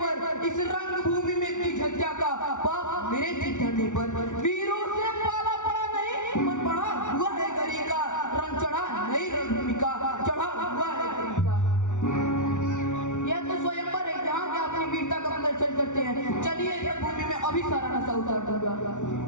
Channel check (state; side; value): late; right; 0.86 ms